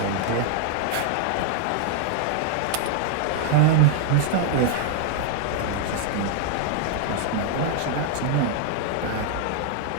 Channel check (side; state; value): both; different; correlation 0.00